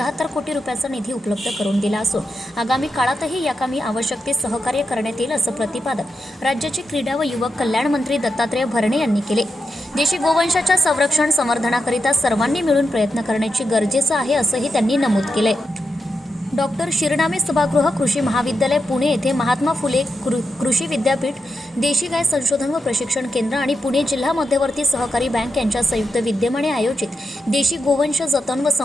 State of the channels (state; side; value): normal; both; correlation 0.87